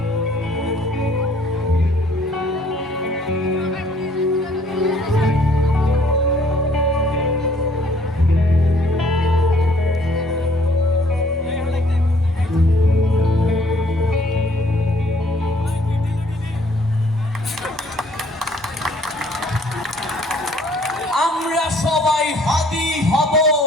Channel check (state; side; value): normal; both; correlation 0.61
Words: আমরা সবাই হাদি হব,